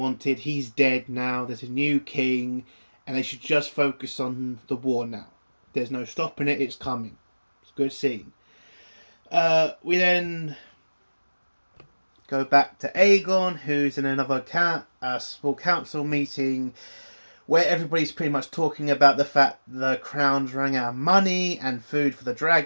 He's dead now. There's a new king. And they should just focus on the war now. There's no stopping it. It's coming. It's a good scene. We then go back to Aegon, who's in another small council meeting, where everybody's pretty much talking about the fact the crown's running out of money and food for the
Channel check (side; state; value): both; inverted; correlation -1.00